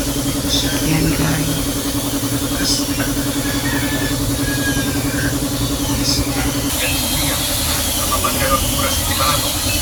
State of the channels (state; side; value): identical; both; correlation 1.00